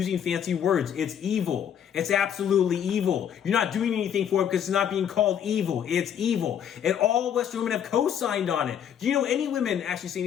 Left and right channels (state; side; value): quieter; right; 9.0 dB